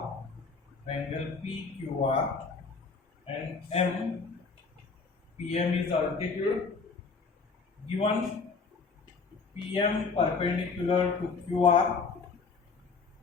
and PM is altitude given. PM perpendicular to QR,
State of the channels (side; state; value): right; quieter; 4.7 dB